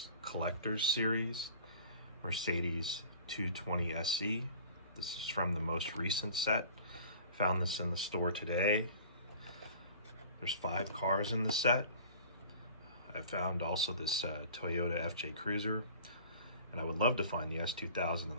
Collectors Series Mercedes 220 SE. This is from the most recent set. Found this in the store today. There's 5 cars in the set. I found also this Toyota FJ Cruiser, and I would love to find the S2000 and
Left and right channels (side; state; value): both; inverted; correlation -0.45